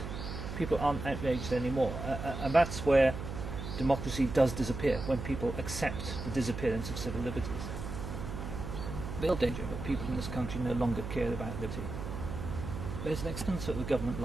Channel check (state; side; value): noise; right; hum, 7 dB below the sound